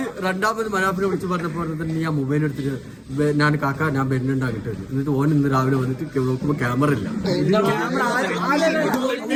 രണ്ടാമത് മനാപ്പിനെ വിളിച്ച് പറഞ്ഞപ്പോ നീ ആ മൊബൈൽ എടുത്തിട്ട് ഞാൻ കാക്ക ഞാൻ വരുന്നുണ്ടാക്കിട്ട് എന്നിട്ട് ഓൻ ഇന്ന് രാവിലെ വന്നിട്ട് നോക്കുമ്പോ ക്യാമറ ഇല്ല.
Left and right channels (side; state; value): both; identical; correlation 1.00